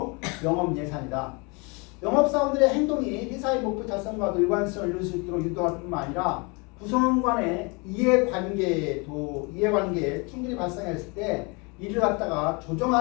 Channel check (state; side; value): quieter; right; 30.1 dB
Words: 영업 예산이다. 영업사원들의 행동이 회사의 목표 달성과도 일관성을 이룰 수 있도록 유도할 뿐만 아니라 구성원 간의 이해관계에 충돌이 발생했을 때 이를 갖다가